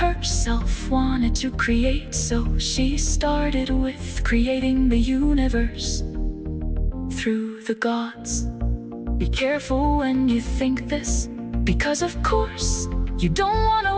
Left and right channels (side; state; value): both; identical; correlation 1.00